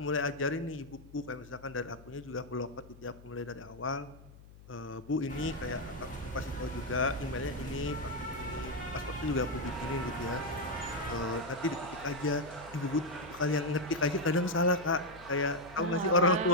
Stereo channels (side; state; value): left; noise; hum, 20 dB below the sound